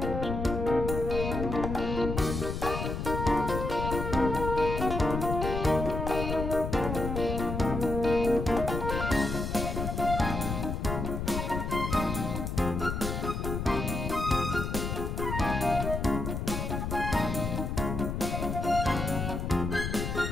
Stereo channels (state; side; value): noise; left; rumble, 3 dB below the sound